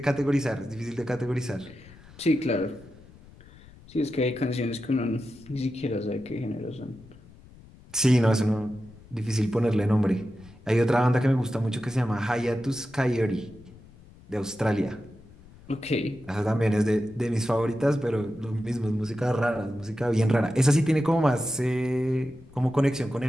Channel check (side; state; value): left; noise; rumble, 22 dB below the sound